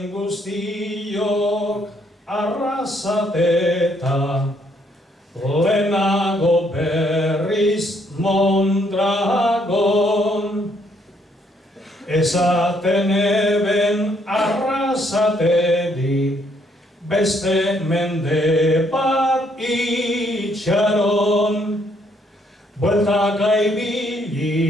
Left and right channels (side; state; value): both; normal; correlation 0.70